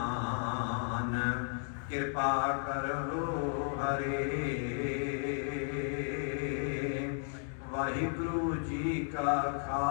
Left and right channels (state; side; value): silent; right; 55 dB below the other